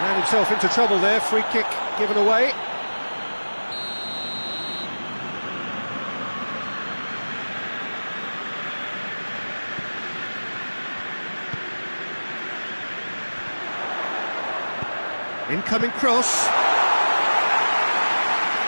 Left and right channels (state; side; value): inverted; both; correlation -1.00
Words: himself into trouble there. Free kick given away. Incoming cross.